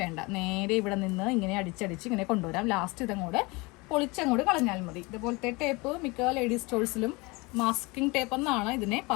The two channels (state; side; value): quieter; right; 25.4 dB